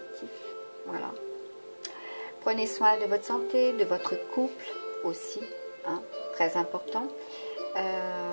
Voilà. Prenez soin de votre santé, de votre couple aussi, très important.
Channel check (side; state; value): both; inverted; correlation -1.00